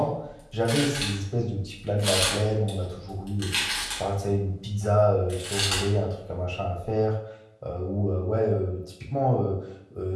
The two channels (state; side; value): identical; both; correlation 1.00